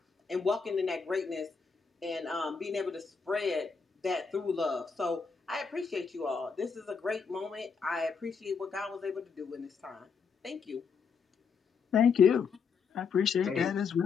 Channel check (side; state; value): right; quieter; 5.6 dB